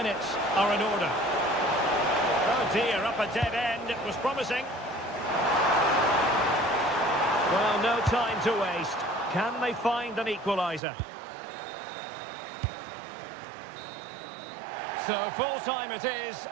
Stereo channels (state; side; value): drops out; left; at 10.8 s